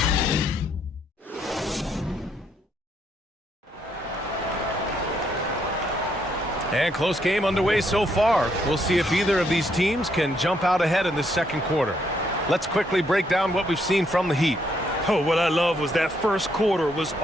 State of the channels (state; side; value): normal; both; correlation 0.73